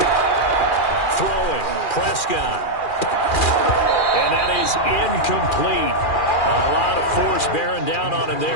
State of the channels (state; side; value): late; right; 2.4 ms